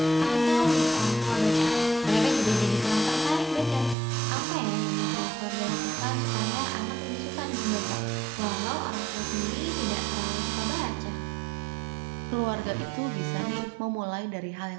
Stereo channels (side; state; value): left; drops out; at 4.0 s